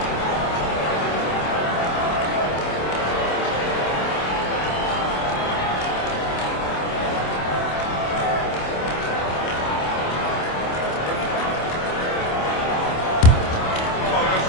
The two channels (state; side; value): late; right; 27 ms